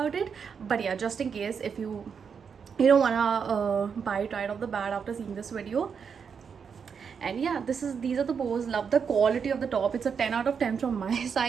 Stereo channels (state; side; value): quieter; left; 6.5 dB